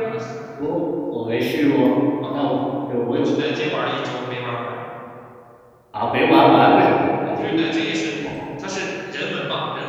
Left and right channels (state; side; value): identical; both; correlation 1.00